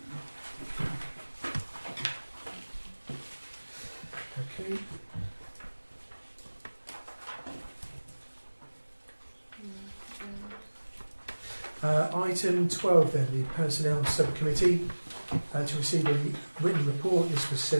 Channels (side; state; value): both; inverted; correlation -1.00